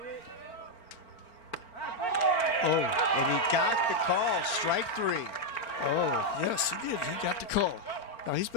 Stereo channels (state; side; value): late; right; 4.4 ms